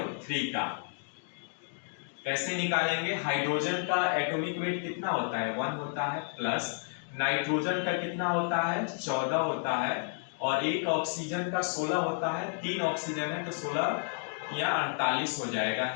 का कैसे निकालेंगे, हाइड्रोजन का एटॉमिक वेट कितना होता है, 1 होता है, प्लस नाइट्रोजन का कितना होता है, 14 होता है, और एक ऑक्सीजन का 16 होता है। 3 ऑक्सीजन है तो 16 या 48 हो जाएगा,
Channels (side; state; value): right; silent; 57 dB below the other